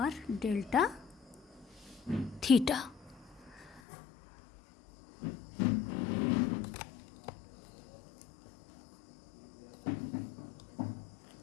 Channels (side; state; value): right; drops out; at 3.8 s